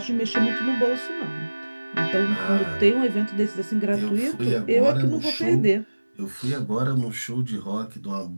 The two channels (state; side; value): inverted; both; correlation -1.00